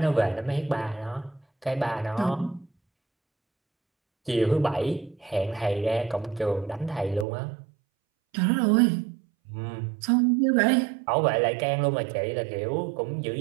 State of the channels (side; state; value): left; drops out; at 7.2 s